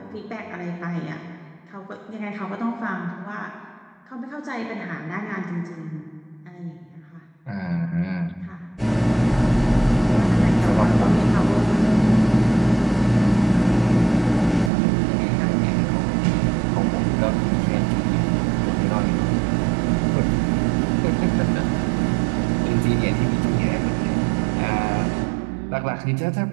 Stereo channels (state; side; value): drops out; left; at 14.7 s